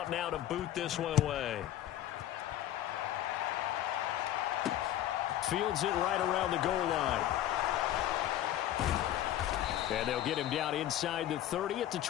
now to boot this one away. Fields it right around the goal line. And they'll get him down inside the 30 at the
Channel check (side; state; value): right; quieter; 12.5 dB